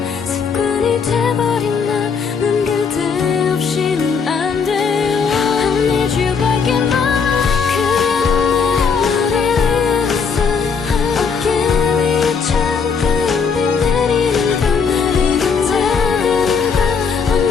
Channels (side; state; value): right; quieter; 5.8 dB